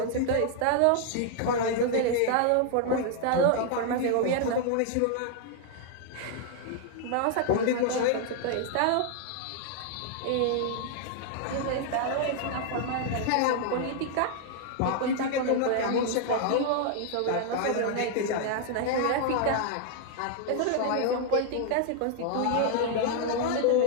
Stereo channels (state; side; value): different; both; correlation 0.00